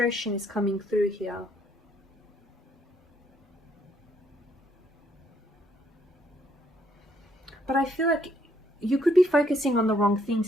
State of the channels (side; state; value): both; normal; correlation 0.69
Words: is coming through here. But I feel like you could be focusing on the wrong